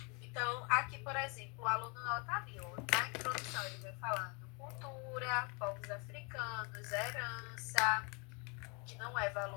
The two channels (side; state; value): right; quieter; 32.3 dB